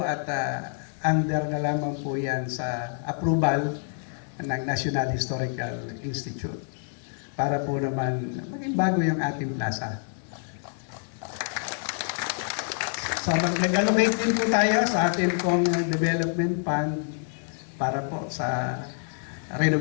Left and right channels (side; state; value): right; silent; 60 dB below the other